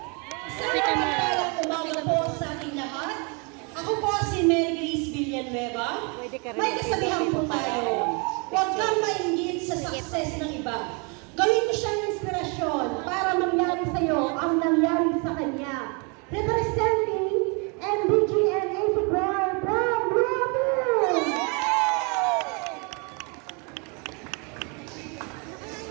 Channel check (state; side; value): quieter; left; 33.5 dB